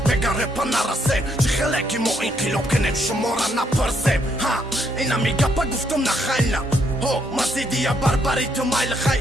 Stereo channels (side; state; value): both; normal; correlation 0.72